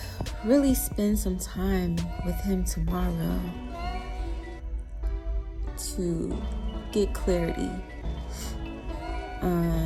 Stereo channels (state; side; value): identical; both; correlation 1.00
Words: really spend some time with Him tomorrow to get clarity